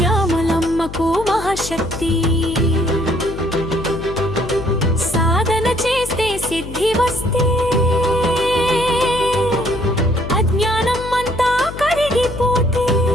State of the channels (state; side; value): noise; left; hum, 11 dB below the sound